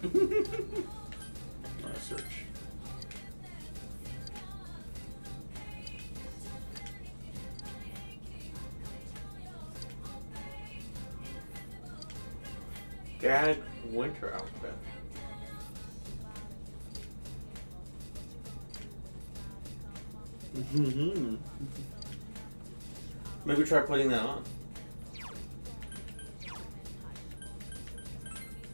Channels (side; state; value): both; inverted; correlation -1.00